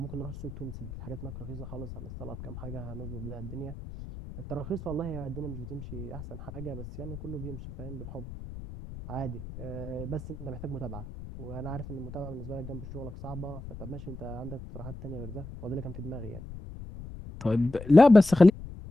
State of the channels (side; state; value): left; noise; rumble, 11 dB below the sound